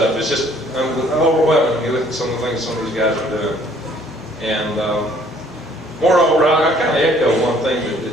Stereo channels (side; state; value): both; normal; correlation 0.59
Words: It's just overwhelming when you look at some of the things some of these guys are doing. And moreover, I kind of echo one thing